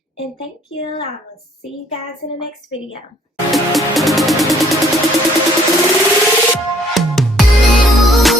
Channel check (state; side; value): normal; both; correlation 0.62